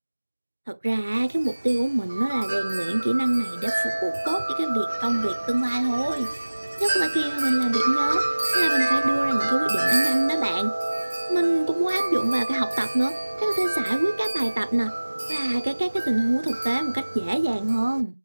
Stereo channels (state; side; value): inverted; both; correlation -1.00